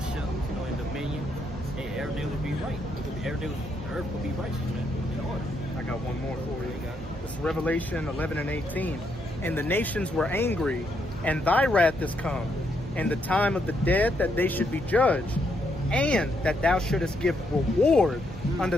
in dominion, hey, everything will be right. The earth will be righteous, man. In order. I got one more for you. This is Revelation 11 and 18. And the nations were angry, and thy wrath is come, and the time of the dead that they should be judged, and that thou shouldest give reward unto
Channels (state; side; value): normal; both; correlation 0.76